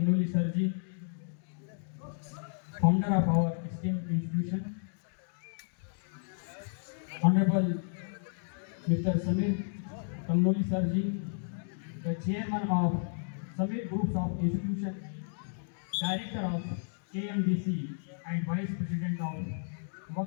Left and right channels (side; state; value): right; silent; digital silence